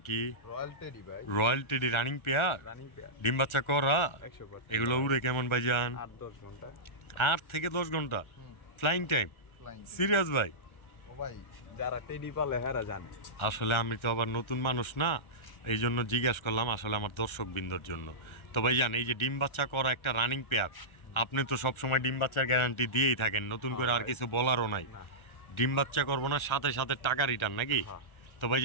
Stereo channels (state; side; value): late; right; 1.3 ms